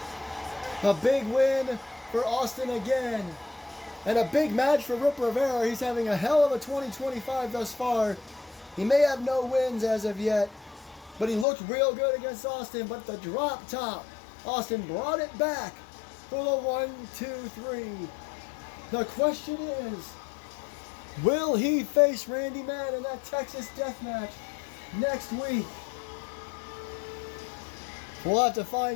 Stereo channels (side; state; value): right; drops out; at 11.5 s